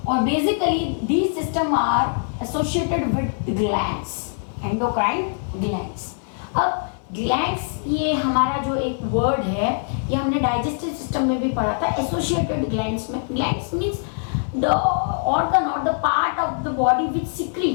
or basically these system are associated with glands, endocrine glands. अब glands ये हमारा जो एक वर्ड है ये हमने डाइजेस्टिव सिस्टम में भी पढ़ा था। एसोसिएटेड ग्लैंड्स में, ग्लैंड्स मीन्स द ऑर्गन और the part of the body which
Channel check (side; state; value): right; silent; 63 dB below the other